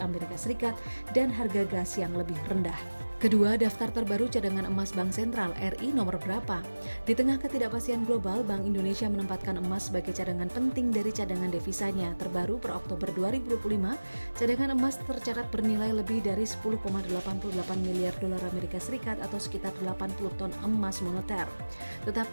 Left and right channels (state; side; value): inverted; both; correlation -1.00